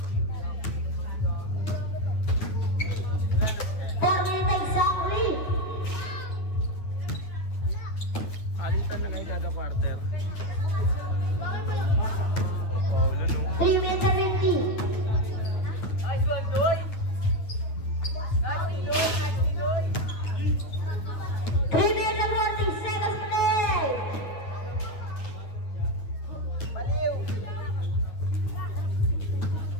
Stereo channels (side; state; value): right; late; 9.6 ms